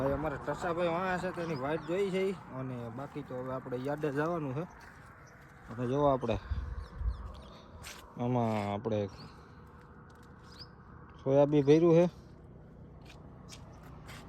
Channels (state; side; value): identical; both; correlation 1.00